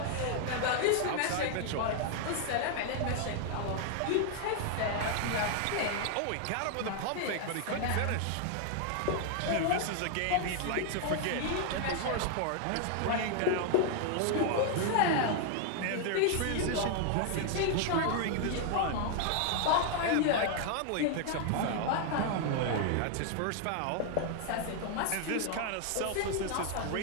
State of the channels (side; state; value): both; different; correlation 0.00